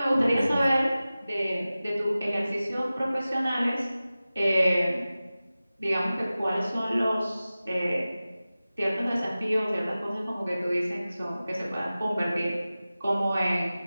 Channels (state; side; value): inverted; both; correlation -0.96